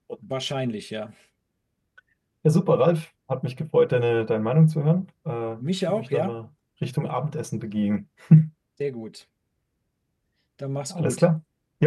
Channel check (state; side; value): identical; both; correlation 1.00